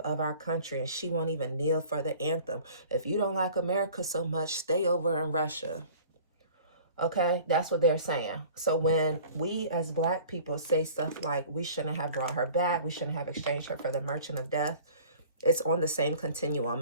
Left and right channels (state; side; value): inverted; both; correlation -0.46